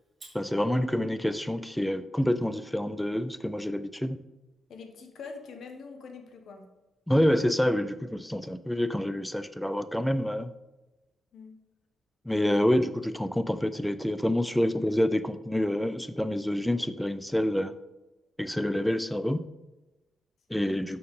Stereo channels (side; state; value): both; normal; correlation 0.97